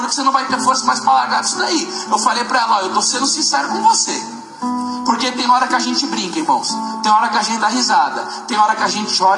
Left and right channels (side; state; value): both; identical; correlation 1.00